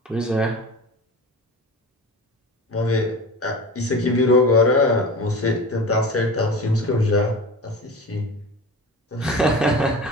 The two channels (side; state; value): both; normal; correlation 0.33